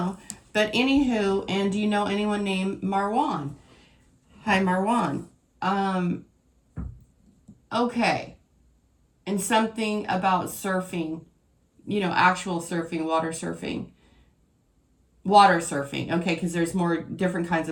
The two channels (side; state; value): both; identical; correlation 1.00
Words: but anywho, and do you know anyone named Marwan? Hi, Marwan. Okay. And something about surfing, you know, actual surfing, water surfing. Water surfing, okay, because there's more different kinds